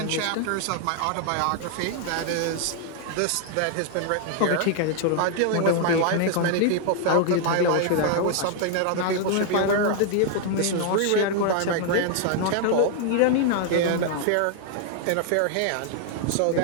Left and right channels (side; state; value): both; different; correlation 0.00